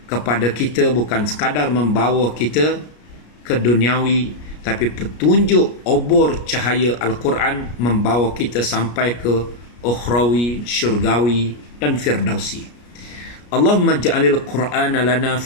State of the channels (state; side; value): late; right; 33 ms